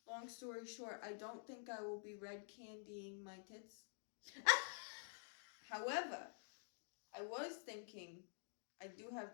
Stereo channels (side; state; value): right; silent; digital silence